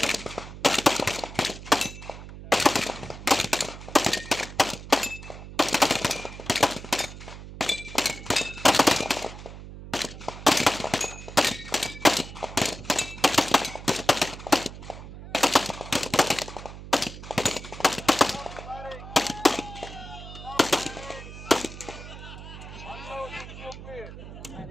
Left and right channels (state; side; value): noise; right; hum, 13 dB below the sound